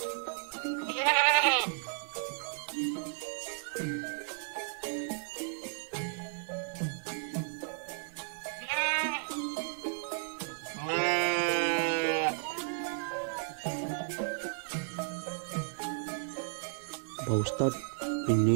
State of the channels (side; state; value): left; silent; 55 dB below the other